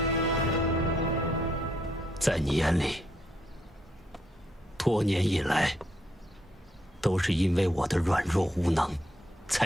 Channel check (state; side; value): normal; both; correlation 0.75